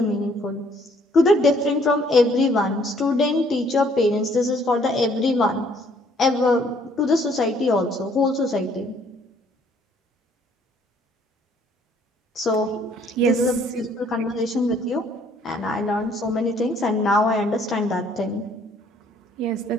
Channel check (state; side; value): normal; both; correlation 0.62